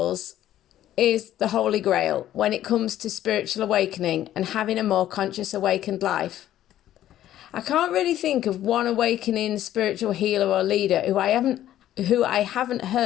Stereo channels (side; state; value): right; quieter; 12.5 dB